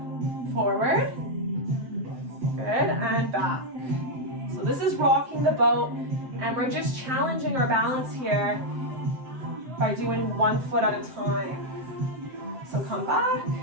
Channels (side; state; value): left; late; 7.6 ms